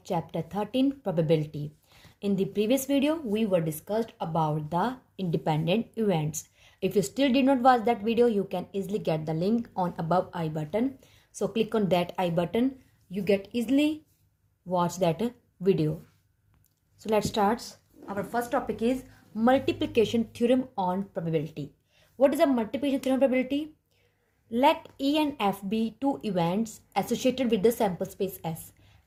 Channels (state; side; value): identical; both; correlation 1.00